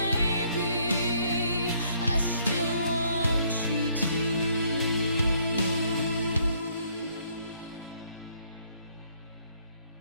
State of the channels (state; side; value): inverted; both; correlation -0.67